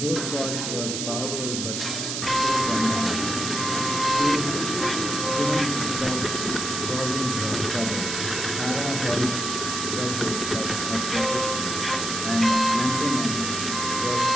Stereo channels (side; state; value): right; noise; hiss, 3 dB below the sound